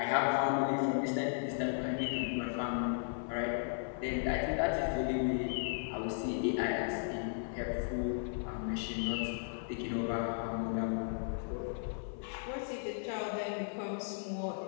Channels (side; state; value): right; silent; 54 dB below the other